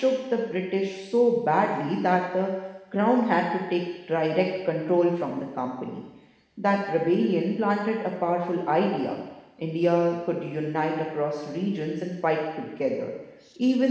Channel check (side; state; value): both; identical; correlation 1.00